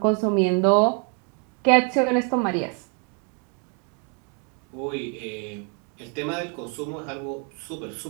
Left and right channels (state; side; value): quieter; left; 38.1 dB